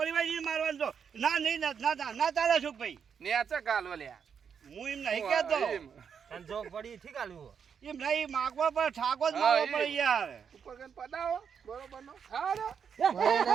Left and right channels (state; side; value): quieter; left; 7.1 dB